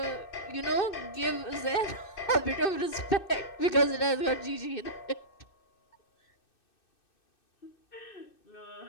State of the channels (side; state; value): right; late; 2.6 ms